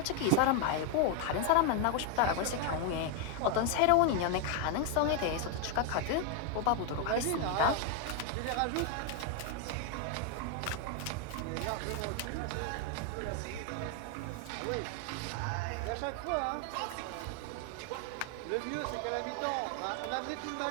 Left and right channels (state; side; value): different; both; correlation 0.00